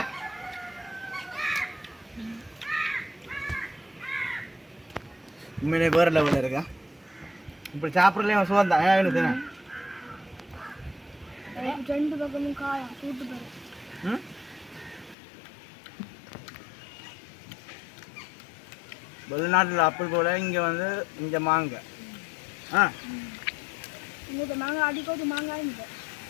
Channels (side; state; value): right; drops out; at 15.2 s